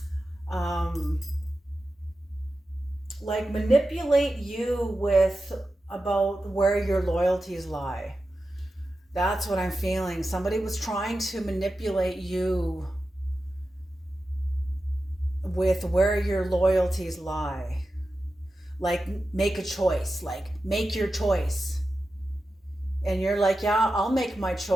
like manipulate you about where your loyalties lie. That's what I'm feeling. Somebody was trying to manipulate you with where your loyalties lie. Like make a choice, like make your choice. And you're like, yeah, I'll make my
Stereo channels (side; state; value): both; normal; correlation 0.92